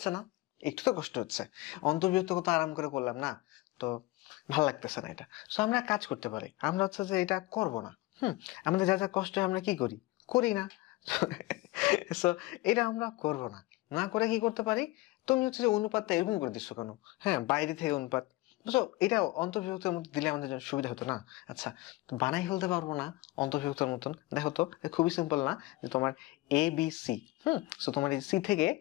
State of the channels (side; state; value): right; quieter; 19.6 dB